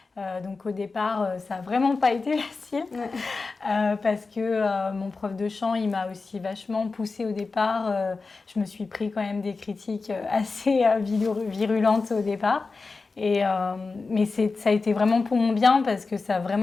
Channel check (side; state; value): right; quieter; 4.1 dB